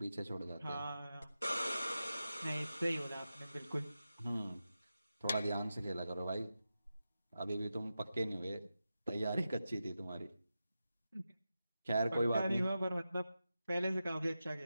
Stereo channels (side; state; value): both; inverted; correlation -0.91